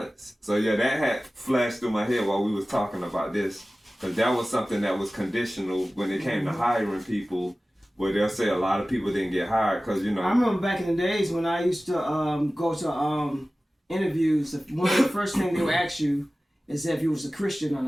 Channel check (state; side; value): normal; both; correlation 0.97